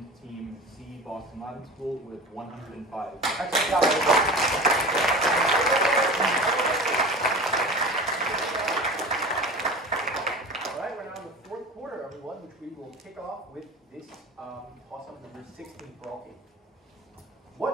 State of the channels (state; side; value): normal; both; correlation 0.35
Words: Team C, Boston Latin School, with 105. Excellent job, everybody. All right, we're now in the 4th quarter, everyone, which we will kick off with this toss-up number 16 for all teams.